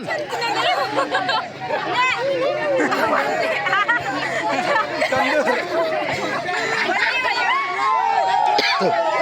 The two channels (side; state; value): both; identical; correlation 1.00